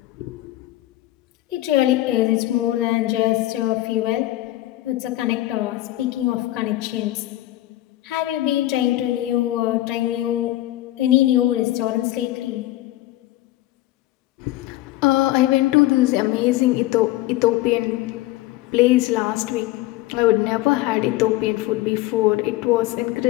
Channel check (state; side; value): quieter; right; 16.3 dB